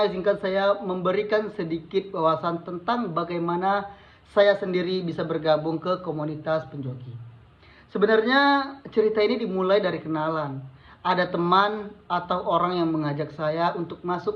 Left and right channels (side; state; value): both; identical; correlation 1.00